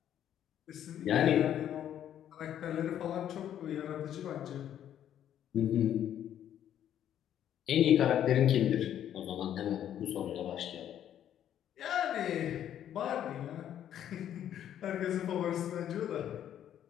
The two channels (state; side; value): quieter; right; 10.5 dB